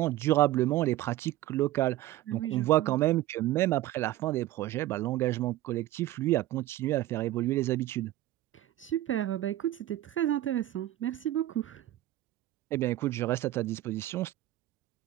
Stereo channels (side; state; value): left; quieter; 15.0 dB